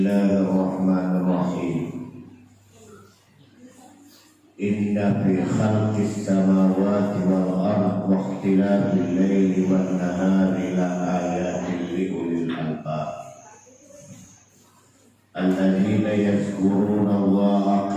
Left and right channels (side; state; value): both; identical; correlation 1.00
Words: Inna fi khalqis samawati wal ardi wa ikhtilafil laili wan nahari la ayatin li ulil albab alladzina yazkuruna Allaha